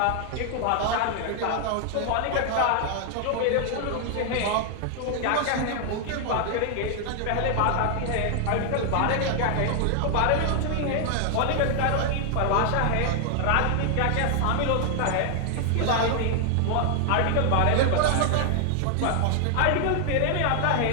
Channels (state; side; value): different; both; correlation 0.00